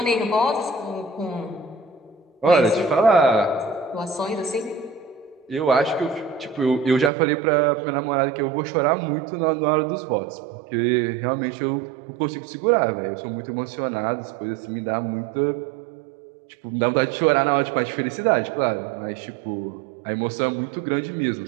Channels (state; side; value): drops out; left; at 7.1 s